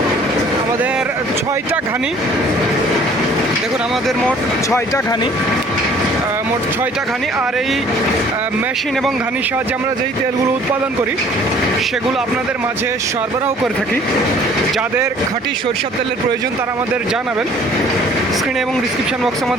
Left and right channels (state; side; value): normal; both; correlation 0.54